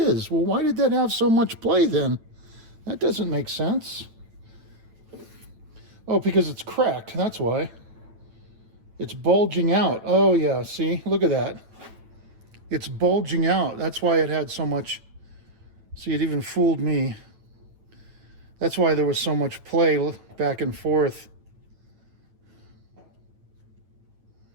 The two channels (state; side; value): late; left; 9.1 ms